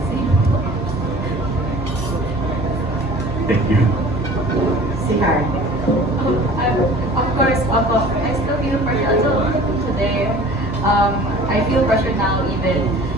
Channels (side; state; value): both; normal; correlation 0.45